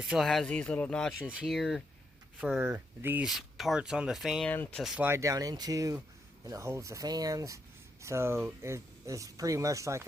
these little notches here for these parts on the fan to slide down into, and it holds the fans. So it's pretty much like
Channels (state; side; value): normal; both; correlation 0.80